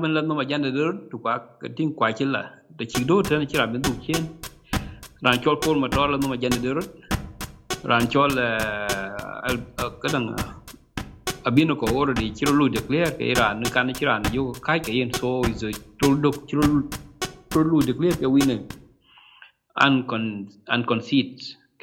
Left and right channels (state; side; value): identical; both; correlation 1.00